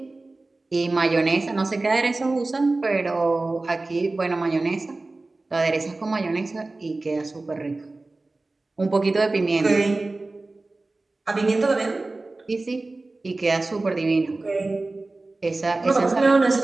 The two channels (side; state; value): left; quieter; 3.2 dB